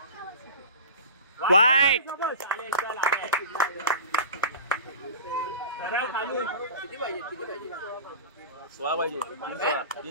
वाईट. सरळ खालून. 16 पाहिजे.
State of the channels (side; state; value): both; inverted; correlation -0.34